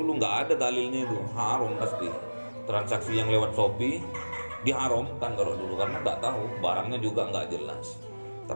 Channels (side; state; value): both; inverted; correlation -1.00